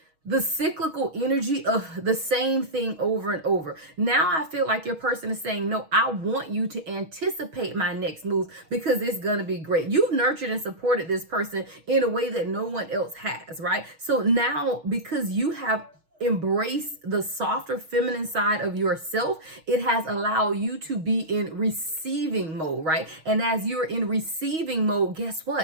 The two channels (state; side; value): late; left; 6.3 ms